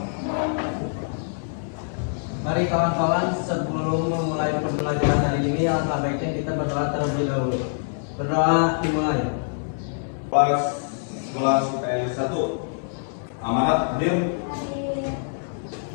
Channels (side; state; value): right; silent; 62 dB below the other